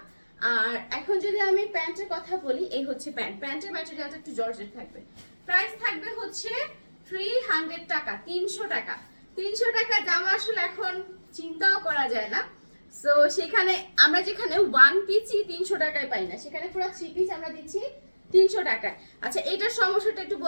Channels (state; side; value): inverted; both; correlation -1.00